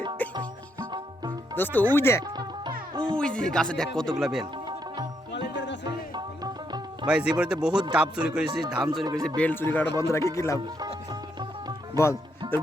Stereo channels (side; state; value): both; normal; correlation 0.77